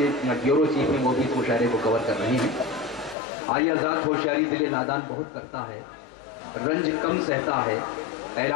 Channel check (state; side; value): drops out; right; at 3.2 s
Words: بیورو چیف ہیں, وہ بھی اس مشاعرے کو کور کر رہے ہیں. آئی آزاد ہوشیاری دل نادان بہت کرتا ہے, رنج کم سہتا ہے,